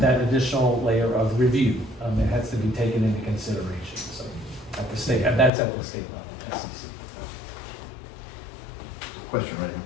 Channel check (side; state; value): right; drops out; at 5.5 s